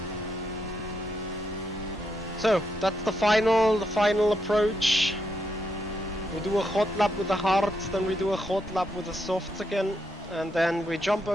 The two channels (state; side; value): normal; both; correlation 0.80